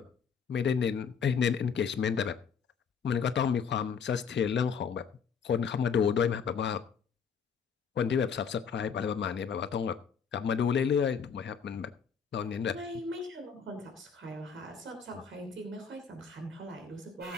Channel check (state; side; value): quieter; right; 6.5 dB